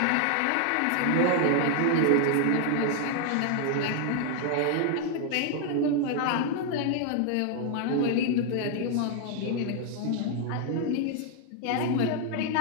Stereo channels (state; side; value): different; both; correlation 0.00